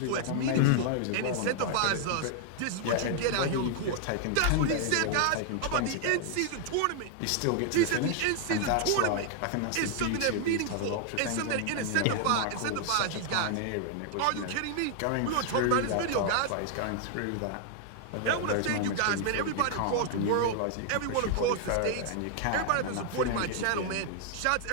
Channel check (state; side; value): different; both; correlation 0.00